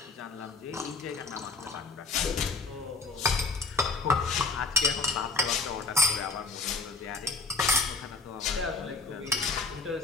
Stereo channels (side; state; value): right; quieter; 3.8 dB